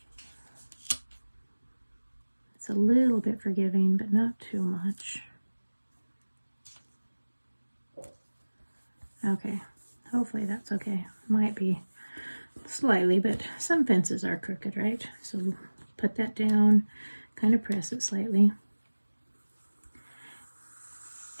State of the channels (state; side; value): inverted; both; correlation -1.00